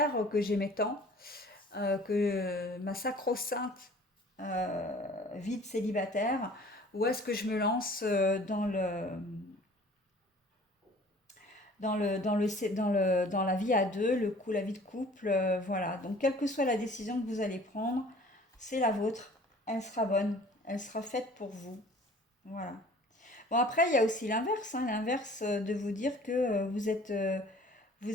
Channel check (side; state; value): both; normal; correlation 0.50